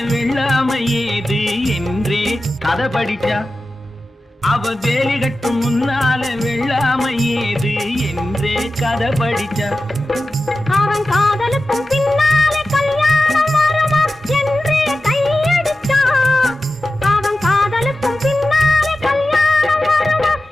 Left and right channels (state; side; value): normal; both; correlation 0.93